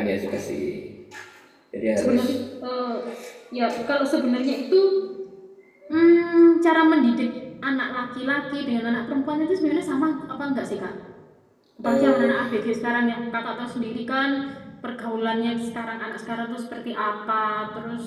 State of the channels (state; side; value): identical; both; correlation 1.00